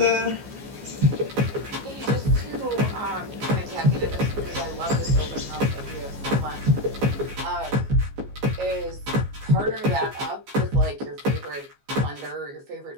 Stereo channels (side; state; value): left; late; 15 ms